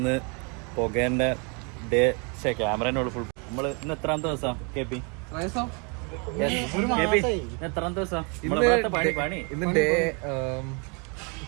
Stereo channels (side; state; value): left; quieter; 33.9 dB